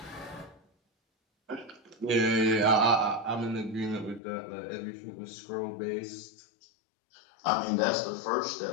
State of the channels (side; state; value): right; drops out; at 4.2 s